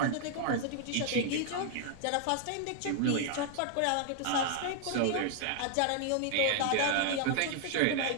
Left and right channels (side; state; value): both; different; correlation 0.00